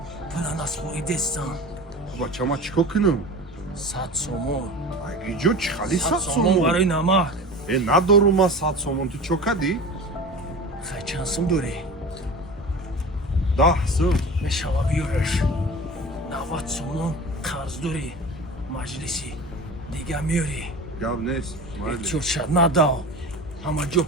пула наспоридестан بچه ما چیکار کنم؟ 100 сомон اگه جو چی خالی 100 100 сомон سومون؟ барои намак ندارم ما 100 سومون تو چو کدی؟ хай чанд сум дорӣ 10 сум. мешава биёраш 90 сомон қарз дорӣ маҷлиси дига миёрӣ گپ نیست. чӯша надав ҳама ҷо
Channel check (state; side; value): normal; both; correlation 0.34